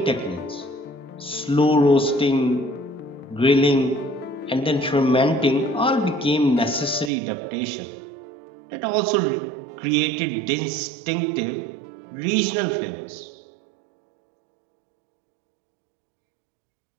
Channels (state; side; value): drops out; left; at 7.1 s